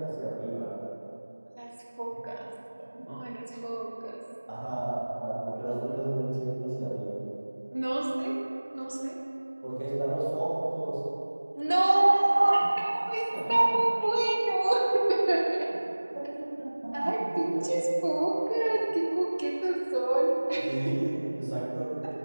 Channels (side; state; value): both; inverted; correlation -1.00